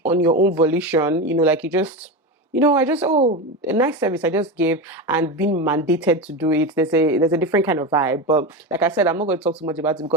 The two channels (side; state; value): both; normal; correlation 0.19